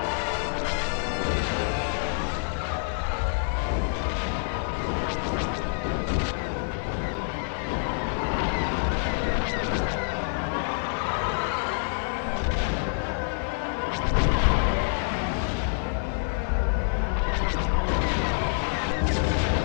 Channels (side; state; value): right; silent; 60 dB below the other